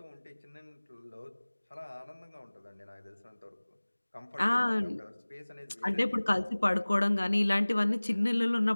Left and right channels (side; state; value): both; inverted; correlation -1.00